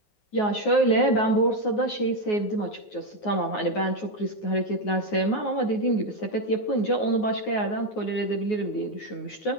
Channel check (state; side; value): late; right; 9.5 ms